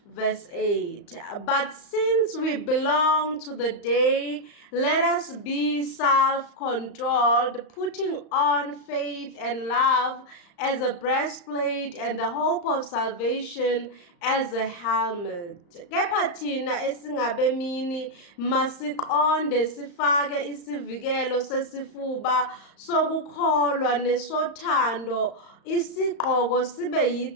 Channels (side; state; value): right; late; 35 ms